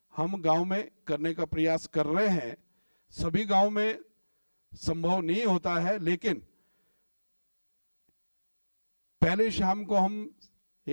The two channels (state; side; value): inverted; both; correlation -1.00